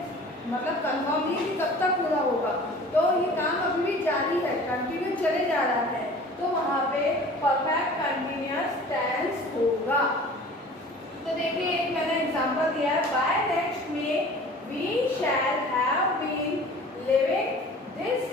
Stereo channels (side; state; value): both; normal; correlation 0.44